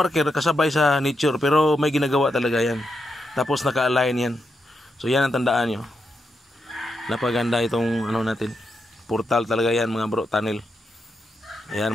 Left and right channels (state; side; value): normal; both; correlation 0.84